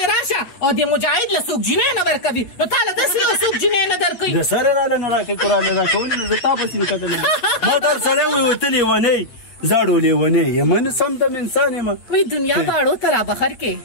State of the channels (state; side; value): late; right; 8.7 ms